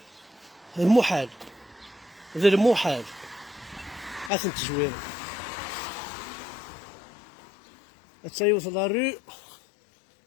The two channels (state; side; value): drops out; right; at 4.3 s